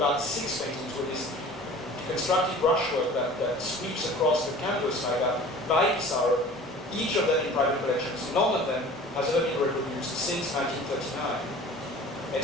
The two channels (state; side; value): normal; both; correlation 0.43